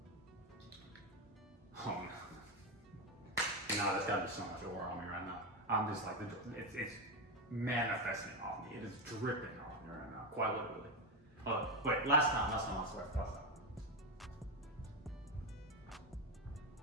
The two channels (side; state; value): both; normal; correlation 0.11